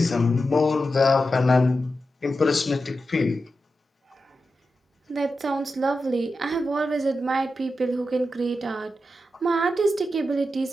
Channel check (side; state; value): both; normal; correlation 0.90